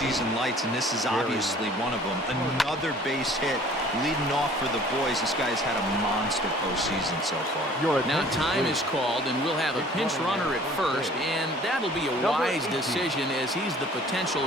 lights, and this is obviously one of them. Another base hit leading off for the boys. This guy's had a monster postseason so far. Now time is called, and we'll have a pinch runner at first, and that'll be a wise decision as he's the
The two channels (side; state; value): both; normal; correlation 0.51